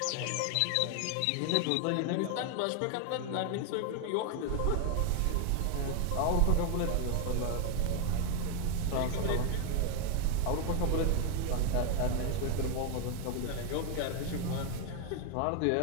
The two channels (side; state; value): both; different; correlation 0.00